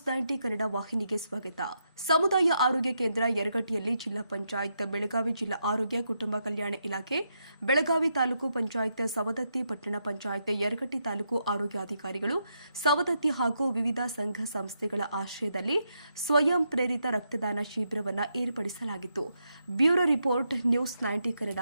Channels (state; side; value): inverted; both; correlation -0.81